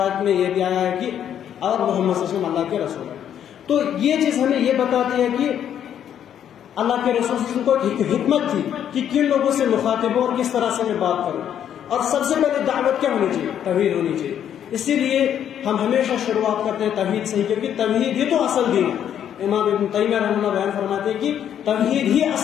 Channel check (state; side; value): quieter; right; 9.6 dB